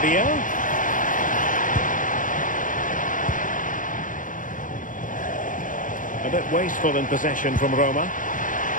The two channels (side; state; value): right; late; 0.38 ms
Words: A bit wasteful in possession from Roma.